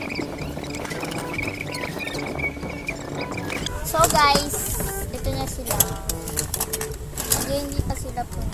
So guys, ito na sila. Hindi pa sila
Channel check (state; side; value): identical; both; correlation 1.00